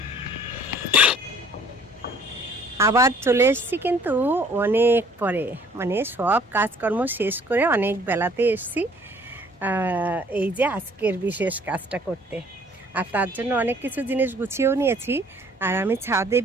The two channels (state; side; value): normal; both; correlation 0.56